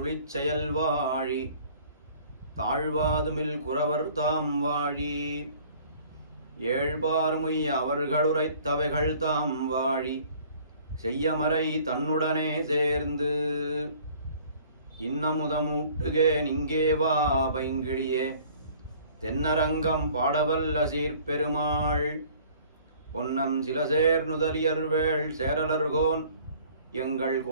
செயல் வாழி தாழ்வாதுமில் குறவர் தாம் வாழி ஏழ்பார்முய் அவர்களுரைத்தவைகள் தாம் வாழி செய்யமறை தன்னுடனே சேர்ந்து இன்னமுதமூட்டுகே நிங்கே வா பைங்கிழியே தென்னரங்கம் பாடவல்ல சீர்பெருமாள் பொன்னம் சிலசேர் நுதலியர்வேள் சேரலர்கோன் எங்கள்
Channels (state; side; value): inverted; both; correlation -0.53